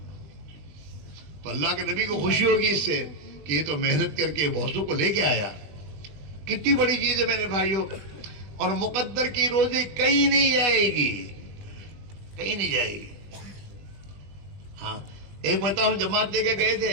تو اللہ کے نبی کو خوشی ہوگی اس سے کہ یہ تو محنت کر کے بہتوں کو لے کے آیا. کتنی بڑی چیز ہے میرے بھائیوں. اور مقدر کی روزی کہیں نہیں جائے گی, کہیں نہیں جائے گی. ہاں ایک بتاؤ, جماعت لے کے گئے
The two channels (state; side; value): late; left; 20 ms